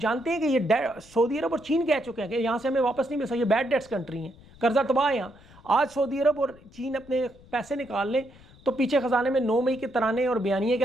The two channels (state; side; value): noise; left; rumble, 24 dB below the sound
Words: ہیں کہ یہ سعودی عرب اور چین کہہ چکے ہیں کہ یہاں سے ہمیں واپس نہیں مل سکتا، یہ بیڈ ڈیٹس کنٹری ہیں، قرضہ تباہ ہے یہاں. آج سعودی عرب اور چین اپنے پیسے نکال لیں تو پیچھے خزانے میں 9 مئی کے ترانے اور بیانیے کے